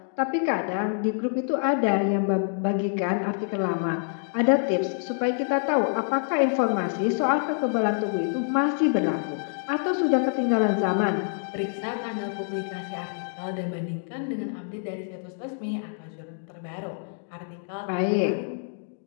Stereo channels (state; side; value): silent; right; digital silence